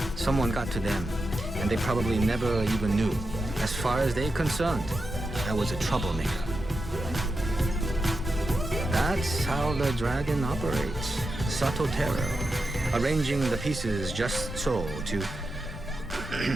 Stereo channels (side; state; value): both; normal; correlation 0.89